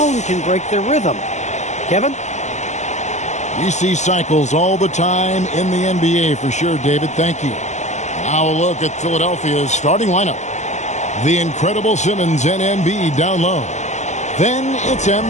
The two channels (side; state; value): right; late; 0.34 ms